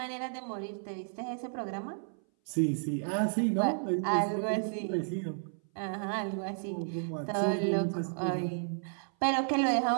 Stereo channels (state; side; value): silent; left; 56 dB below the other